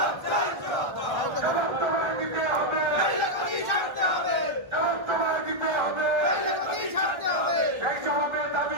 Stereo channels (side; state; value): left; late; 1.4 ms